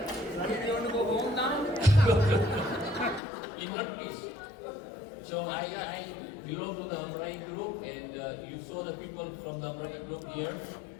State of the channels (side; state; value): right; drops out; at 3.2 s